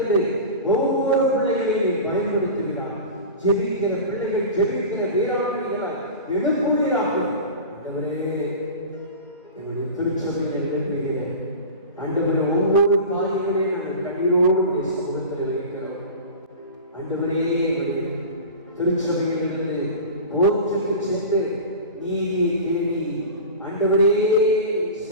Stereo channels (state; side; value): inverted; both; correlation -0.32